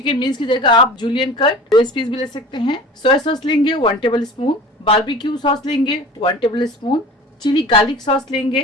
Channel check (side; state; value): both; normal; correlation 0.40